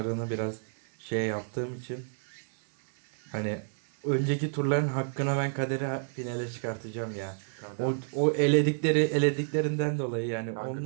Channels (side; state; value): left; silent; 58 dB below the other